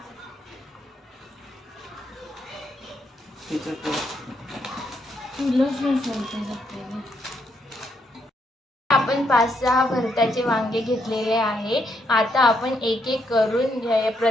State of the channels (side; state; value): both; normal; correlation 0.76